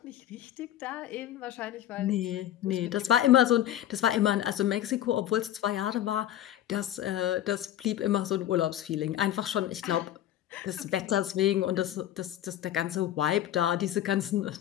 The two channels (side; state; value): right; quieter; 12.1 dB